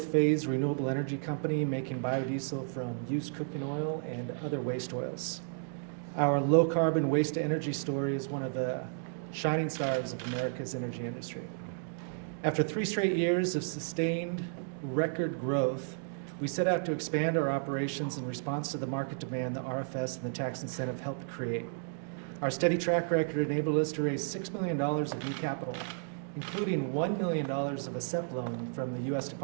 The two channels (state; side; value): silent; left; digital silence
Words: phase renewable energy company making biodiesel from used cooking oil and other waste oils. Our low carbon waste to energy story is one of the shining stars of America's energy industry. After 3 straight years of sustained record growth, we set out to expand our operations in response to the market demand the RFS and the tax incentive helped create. Our steady track record enabled us to raise $6 million of new capital, including $1 million of a SEP loan from the U.S.